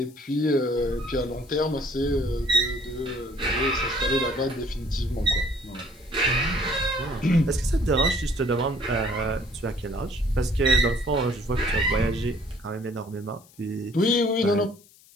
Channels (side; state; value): left; noise; hiss, 27 dB below the sound